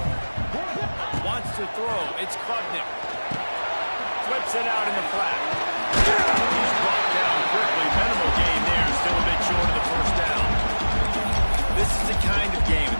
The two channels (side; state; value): both; inverted; correlation -1.00